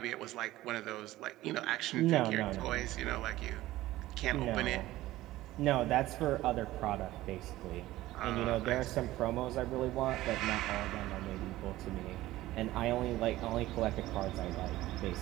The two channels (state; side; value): quieter; left; 16.3 dB